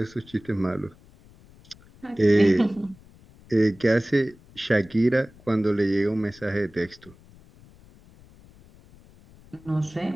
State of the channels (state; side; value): noise; left; rumble, 25 dB below the sound